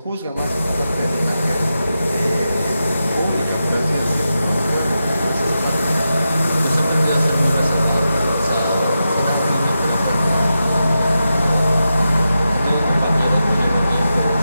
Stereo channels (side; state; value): both; inverted; correlation -0.89